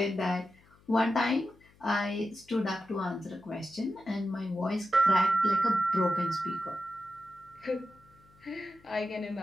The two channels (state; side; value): noise; left; hum, 29 dB below the sound